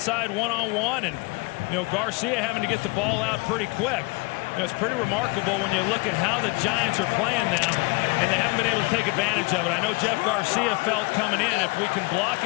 one-on-one, and Garcia having to get the ball out pretty quick. It's pretty remarkable when you look at how the Giants are playing them, and they haven't been able to take advantage of it. I know Jeff Garcia felt coming in, if we can block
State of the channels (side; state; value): right; quieter; 27.1 dB